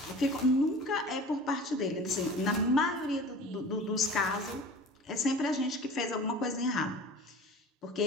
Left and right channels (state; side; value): normal; both; correlation 0.40